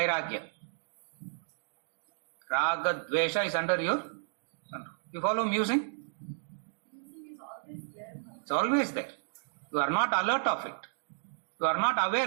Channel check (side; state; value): left; silent; digital silence